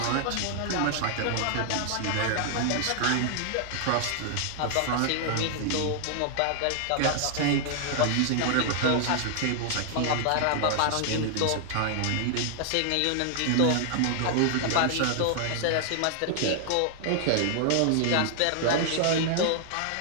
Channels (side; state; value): both; different; correlation -0.01